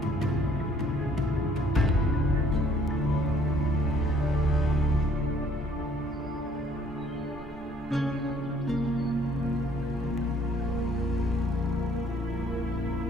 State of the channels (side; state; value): both; normal; correlation 0.61